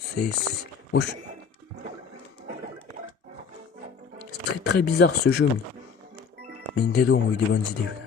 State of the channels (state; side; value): quieter; right; 5.9 dB